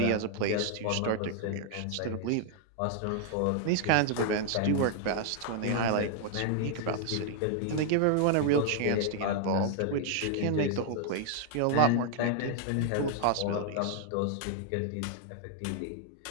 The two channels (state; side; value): different; both; correlation 0.00